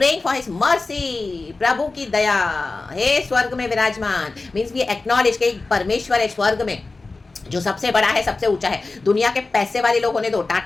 for his mercy। प्रभु की दया, हे स्वर्ग में विराजमान, means we acknowledge कि परमेश्वर है स्वर्ग में जो सबसे बड़ा है, सबसे ऊंचा है। दुनिया के पैसे वाले लोग होने दो,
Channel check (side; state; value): right; quieter; 3.6 dB